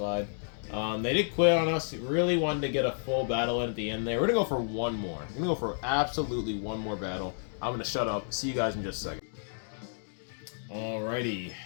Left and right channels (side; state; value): right; silent; digital silence